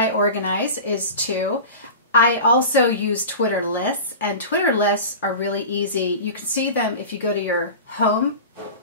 organize is to, I also use Twitter lists, and Twitter lists are really easy. You can see them if you go to your home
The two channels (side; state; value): both; inverted; correlation -0.33